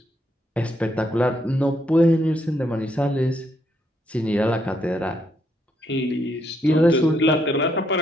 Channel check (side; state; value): both; normal; correlation 0.75